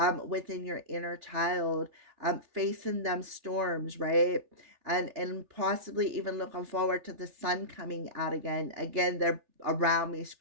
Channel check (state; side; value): late; left; 3.4 ms